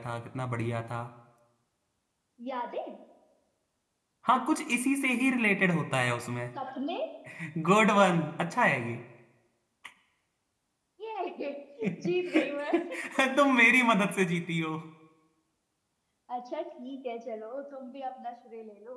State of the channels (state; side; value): identical; both; correlation 1.00